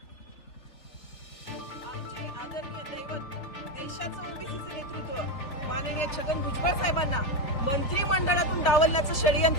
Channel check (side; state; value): right; late; 3.4 ms